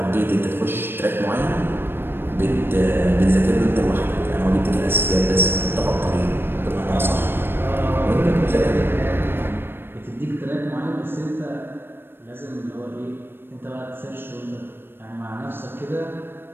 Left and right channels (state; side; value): late; left; 0.10 ms